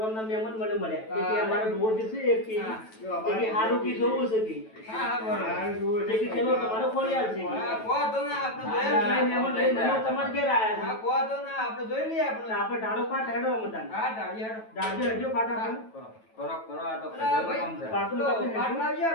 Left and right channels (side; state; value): right; late; 9.1 ms